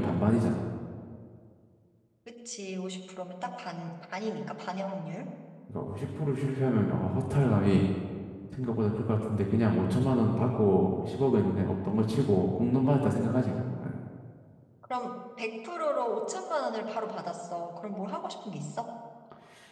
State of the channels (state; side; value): identical; both; correlation 1.00